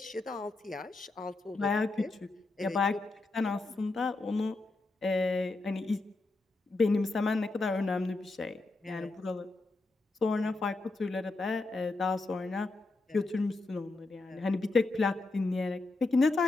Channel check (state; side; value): quieter; right; 3.2 dB